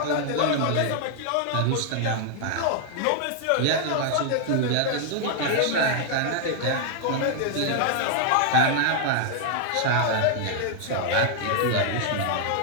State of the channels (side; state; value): both; different; correlation 0.00